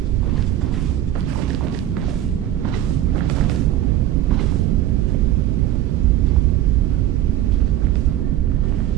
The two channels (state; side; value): quieter; left; 12.7 dB